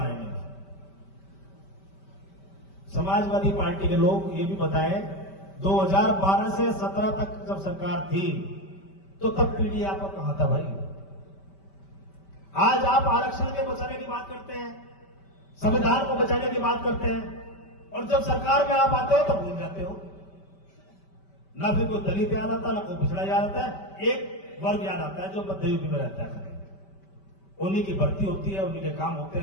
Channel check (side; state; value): right; late; 5.2 ms